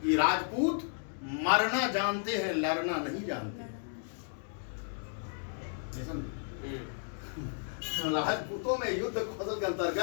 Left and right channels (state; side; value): silent; right; digital silence